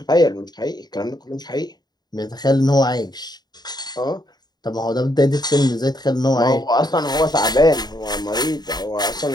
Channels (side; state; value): right; late; 0.20 ms